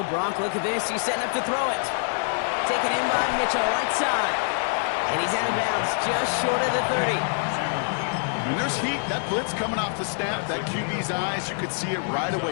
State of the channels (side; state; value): right; silent; digital silence